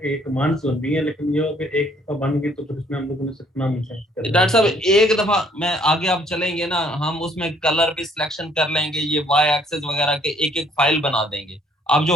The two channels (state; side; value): normal; both; correlation 0.62